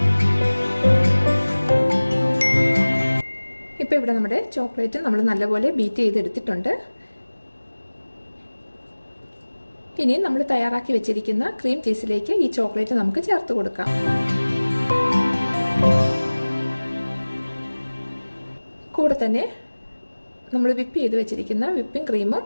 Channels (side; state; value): both; inverted; correlation -1.00